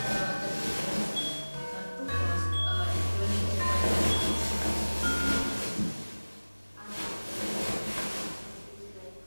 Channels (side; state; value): both; inverted; correlation -1.00